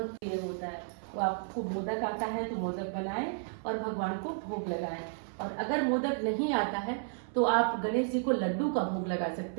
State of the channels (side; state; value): left; silent; 56 dB below the other